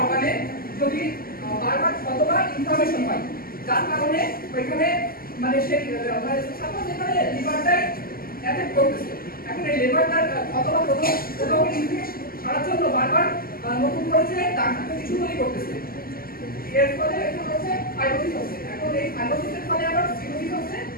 অর্গানে যদি বারবার কতবার ইনফরমেশন হয় যার কারণে ওইখানে মানে সেই মানে সাপোজ এখানে লিভারটাই অ্যাফেক্ট করতেছে। এখন এই লিভারটার অথবা কোথাও ইনফেকশন সারার জন্য বারবার নতুন করে যে ডাক্তার কিছু তৈরি করতেছে, এর ফলে এখন হচ্ছে ফাইব্রোসিস হচ্ছে। এখন এই ফাইব্রোসিসের ফলে আবার সিরোসিস হচ্ছে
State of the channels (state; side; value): late; right; 0.42 ms